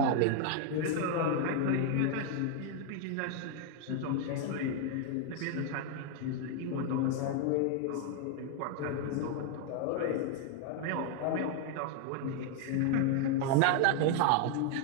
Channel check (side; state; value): both; different; correlation 0.00